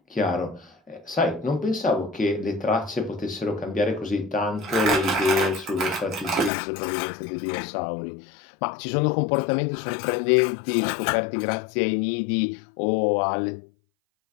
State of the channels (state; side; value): drops out; right; at 6.5 s